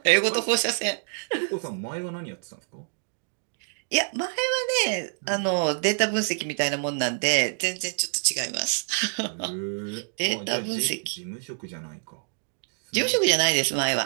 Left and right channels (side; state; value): left; silent; digital silence